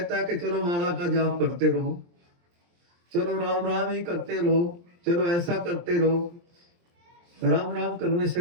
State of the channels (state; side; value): late; left; 23 ms